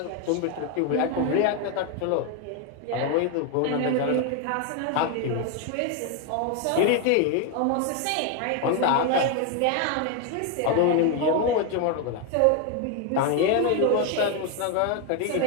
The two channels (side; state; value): both; different; correlation 0.01